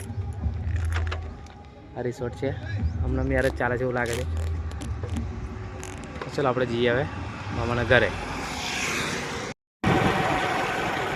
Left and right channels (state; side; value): identical; both; correlation 1.00